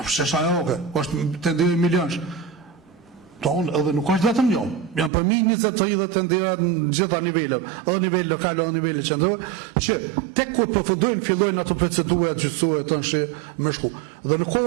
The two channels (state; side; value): drops out; left; at 5.1 s